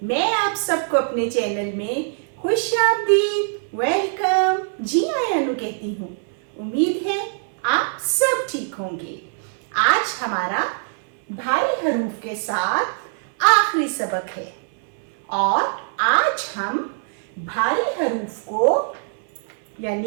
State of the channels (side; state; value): left; silent; 59 dB below the other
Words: मैं आप सबको अपने चैनल में खुशामदीद वेलकम जी आयानु कहती हूँ। उम्मीद है आप सब ठीक होंगे। आज हमारा भारी हरूफ के साथ आखिरी सबक है और आज हम भारी हरूफ को